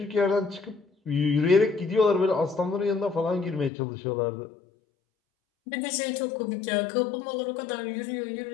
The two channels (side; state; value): right; drops out; at 3.7 s